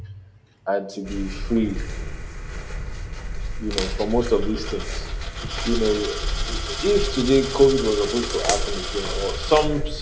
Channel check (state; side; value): identical; both; correlation 1.00